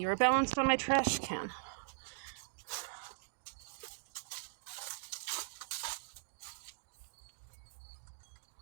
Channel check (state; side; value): silent; left; digital silence